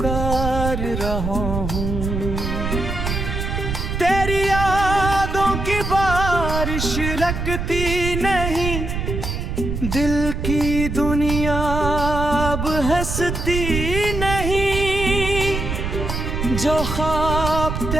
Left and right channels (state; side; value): noise; right; rumble, 3 dB below the sound